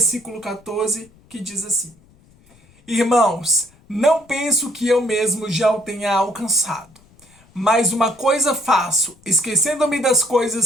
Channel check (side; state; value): left; noise; rumble, 29 dB below the sound